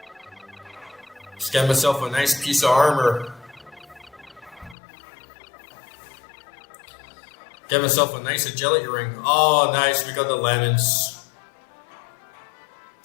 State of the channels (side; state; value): right; drops out; at 4.8 s